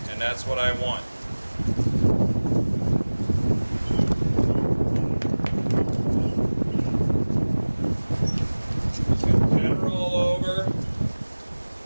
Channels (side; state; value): both; inverted; correlation -1.00